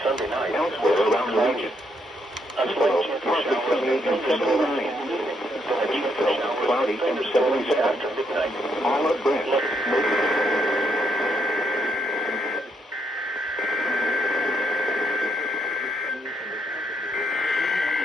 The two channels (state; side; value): normal; both; correlation 0.75